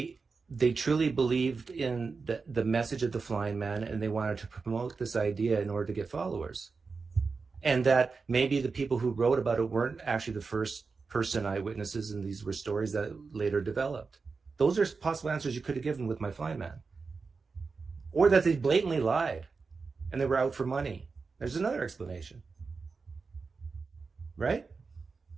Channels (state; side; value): quieter; left; 4.6 dB